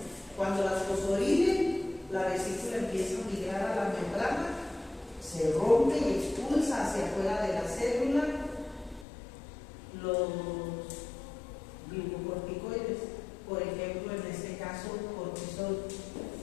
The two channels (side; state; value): right; drops out; at 9.1 s